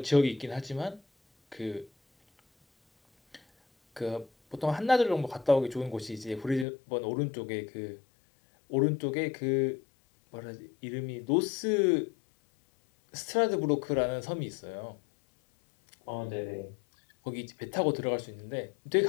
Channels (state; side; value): drops out; right; at 6.7 s